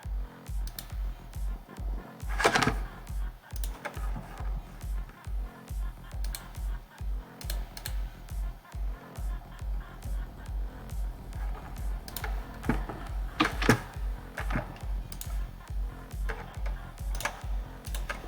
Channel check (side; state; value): both; identical; correlation 1.00